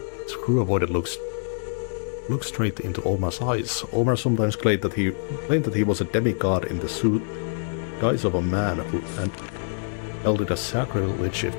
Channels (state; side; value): silent; right; digital silence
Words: his crew avoided looked straight into Omar's eyes. Omar sometimes claimed that he was a demigod in the suit guise of a man and held it as sacrilege